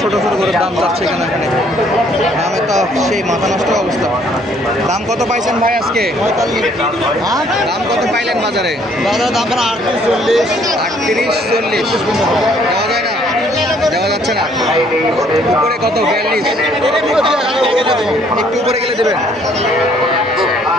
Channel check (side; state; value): both; normal; correlation 0.63